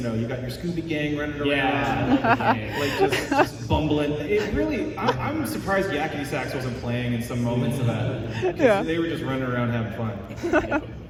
got your Scooby Gang running around. Yeah. Like just bumbling. It really. I'm surprised Yakety Sax wasn't playing in some moments of that. Yeah. They were just running around having fun.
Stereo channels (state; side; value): identical; both; correlation 1.00